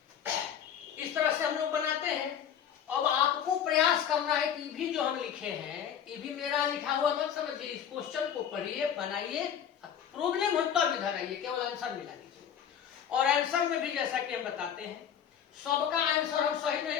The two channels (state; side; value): quieter; right; 8.8 dB